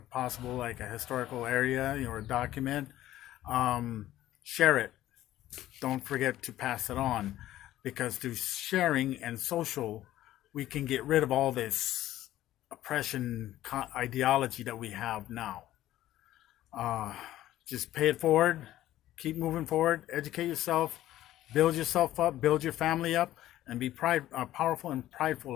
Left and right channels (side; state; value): right; quieter; 14.0 dB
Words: possible, like a historical area or a document, share it. Don't forget to pass it on, because through sharing and social, we can get rid of all this oppression ideology that we have now. Just pay it forward, keep moving forward, educate yourself, build yourself up, build your family up, and be powerful and prideful